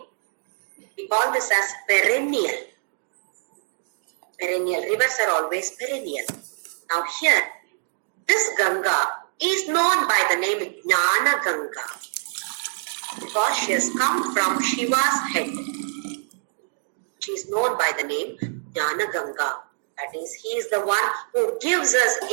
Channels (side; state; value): left; silent; digital silence